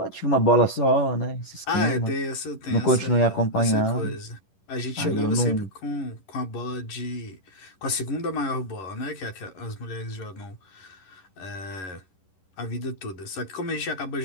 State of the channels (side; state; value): right; late; 11 ms